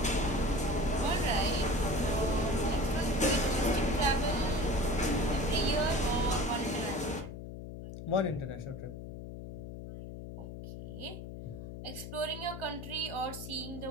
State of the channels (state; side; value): noise; left; hum, 10 dB below the sound